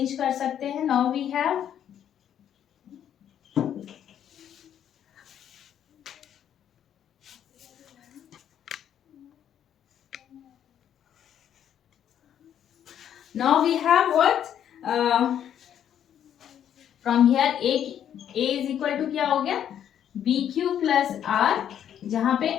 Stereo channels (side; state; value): right; quieter; 9.8 dB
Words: कर सकते हैं, now we have what, from here a is equal to क्या हो गया, bq plus r, जहां पे